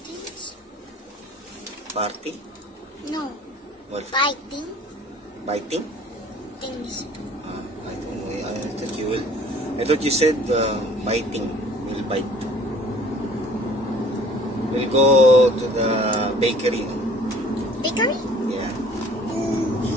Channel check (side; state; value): both; normal; correlation 0.52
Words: Party? No. What? Biting Biting? things. I don't know. I thought you said biting. We'll bite. We'll go to the bakery. Bakery? Yeah.